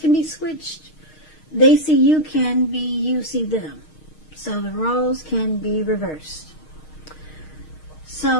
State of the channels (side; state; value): right; late; 6.5 ms